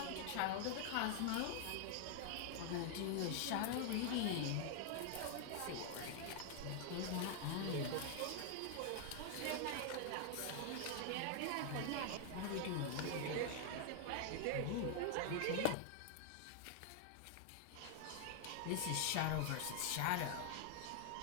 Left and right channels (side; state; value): both; different; correlation 0.00